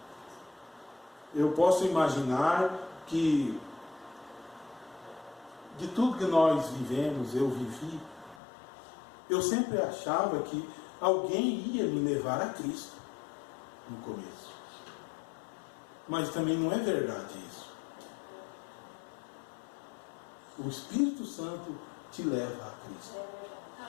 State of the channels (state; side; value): drops out; right; at 8.4 s